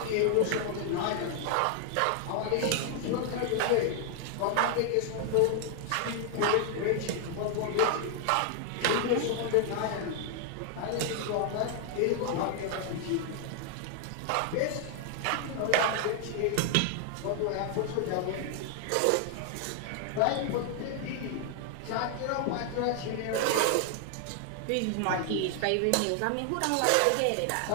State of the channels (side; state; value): both; different; correlation 0.00